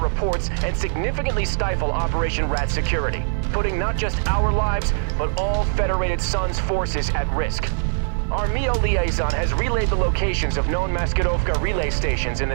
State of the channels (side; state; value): left; silent; 64 dB below the other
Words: reports and significantly stifle Operation Rat security, putting not just our lives, but all Federated Suns forces at risk. Our MEO liaison has relayed the locations of known Maskirovka relay stations in the